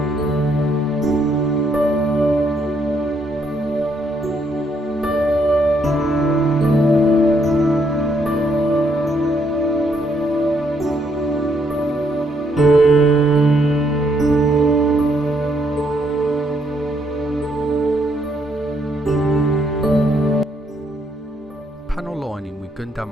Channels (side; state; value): both; normal; correlation 0.73